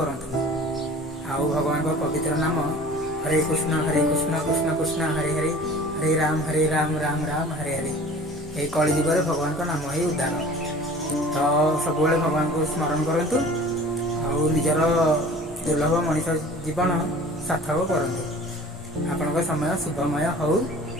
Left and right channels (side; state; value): both; normal; correlation 0.45